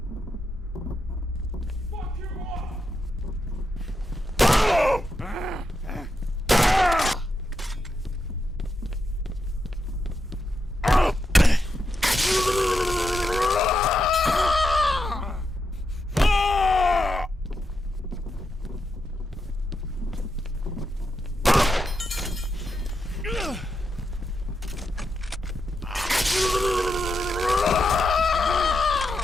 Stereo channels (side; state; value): both; normal; correlation 0.85